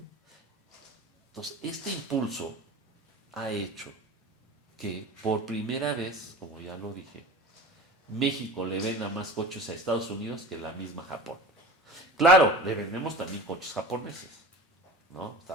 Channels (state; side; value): normal; both; correlation 0.36